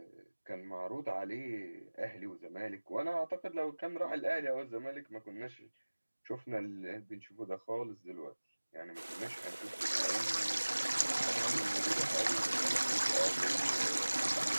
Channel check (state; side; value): inverted; both; correlation -1.00